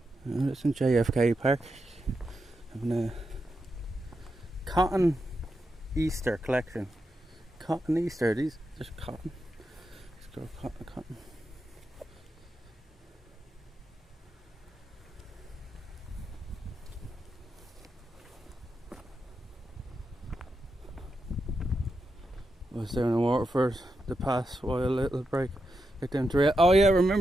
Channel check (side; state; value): both; normal; correlation 0.86